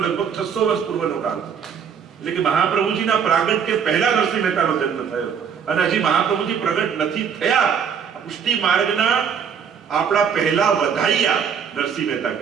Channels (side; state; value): left; quieter; 7.2 dB